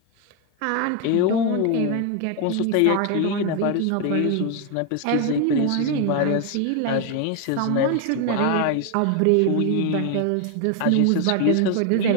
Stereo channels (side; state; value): both; different; correlation 0.01